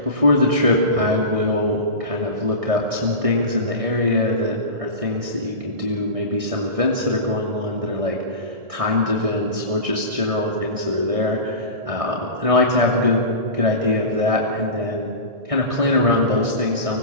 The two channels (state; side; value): late; left; 1.6 ms